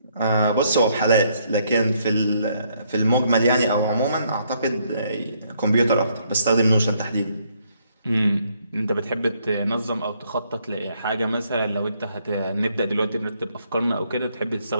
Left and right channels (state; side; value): inverted; both; correlation -0.70